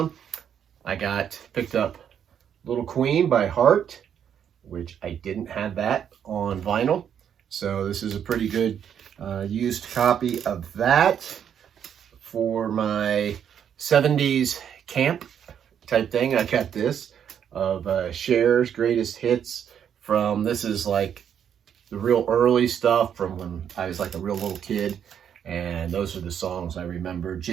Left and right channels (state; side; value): quieter; left; 8.7 dB